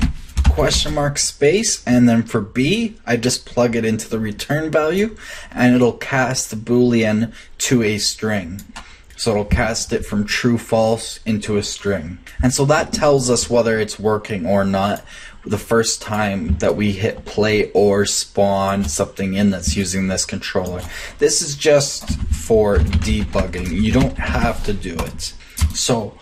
question mark space, and then for B I just plug it into the return value and it'll cast the boolean to a string. So it'll cast it from true false into a string. And so that tells us whether it's working or not the first time that we hit play or spawn something in that's using this controller. This is just for debugging. You don't have to do it. So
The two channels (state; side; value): identical; both; correlation 1.00